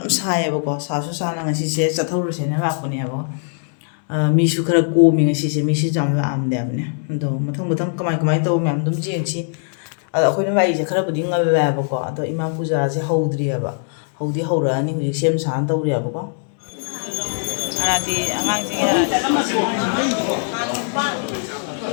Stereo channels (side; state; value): right; silent; 62 dB below the other